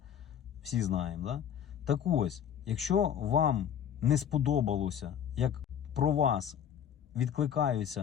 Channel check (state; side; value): quieter; right; 8.9 dB